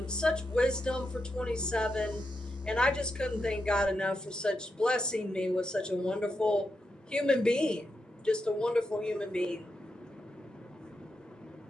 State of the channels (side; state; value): both; normal; correlation 0.85